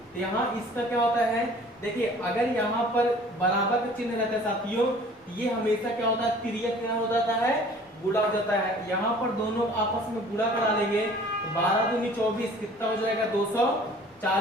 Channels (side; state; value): both; normal; correlation 0.50